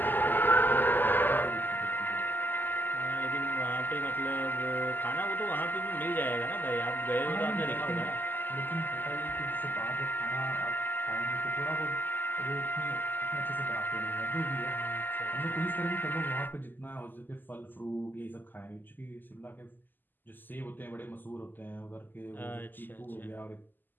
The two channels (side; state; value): right; late; 0.090 ms